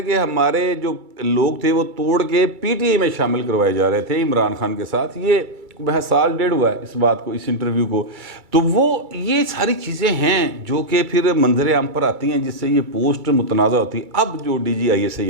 कि हमारे जो लोग थे वो तोड़ के पीटीआई में शामिल करवाए जा रहे थे इमरान खान के साथ। ये वह साल डेढ़ हुआ है इस बात को, इस इंटरव्यू को। तो वो ये सारी चीज़ें हैं जो कि फिर मंजर आम पर आती हैं जिससे ये पोस्ट मुतनाज़ा होती है। अब जो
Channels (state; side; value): late; left; 2.3 ms